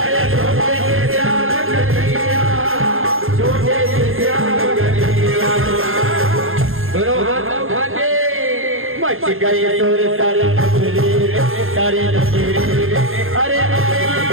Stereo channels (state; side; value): late; left; 0.60 ms